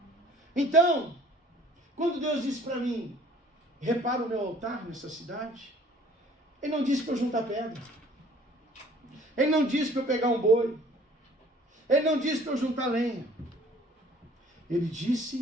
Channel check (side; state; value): both; normal; correlation 0.54